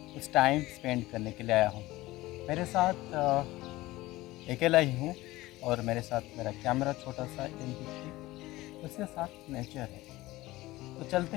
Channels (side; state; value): right; quieter; 18.4 dB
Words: कुछ टाइम स्पेंड करने के लिए आया हूँ। मेरे साथ अकेला ही हूँ और मेरे साथ मेरा कैमरा छोटा सा M50, उसके साथ नेचर है। तो